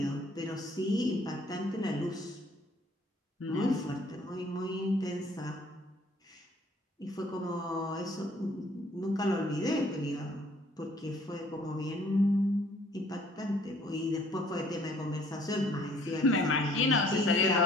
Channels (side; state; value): both; normal; correlation 0.59